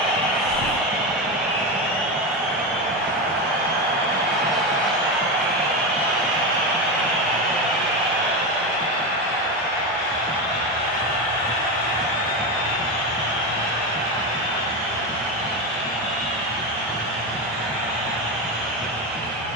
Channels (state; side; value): normal; both; correlation 0.16